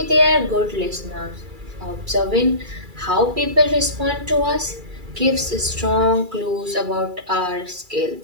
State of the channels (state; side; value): late; left; 2.3 ms